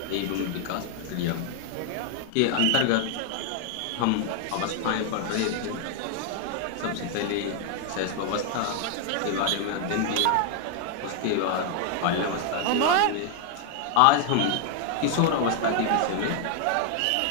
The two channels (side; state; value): both; different; correlation 0.00